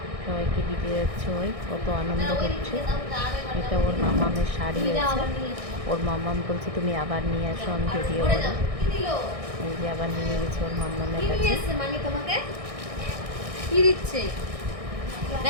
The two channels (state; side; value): late; left; 1.6 ms